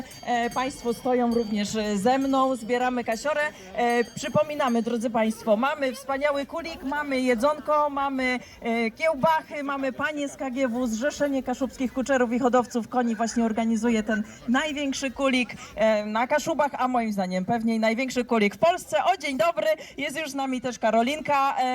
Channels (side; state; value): both; identical; correlation 1.00